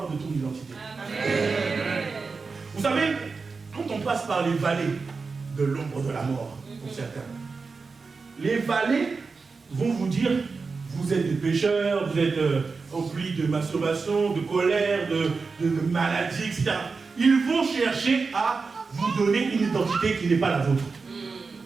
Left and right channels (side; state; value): left; quieter; 4.5 dB